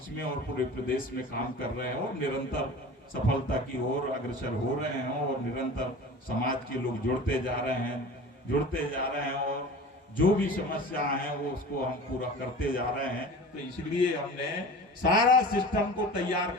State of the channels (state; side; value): normal; both; correlation 0.37